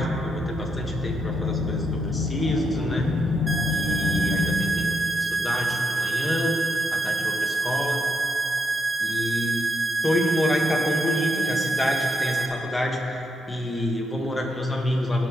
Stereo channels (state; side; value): normal; both; correlation 0.81